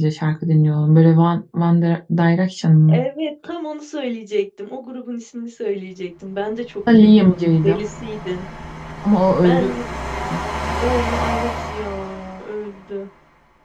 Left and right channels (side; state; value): both; identical; correlation 1.00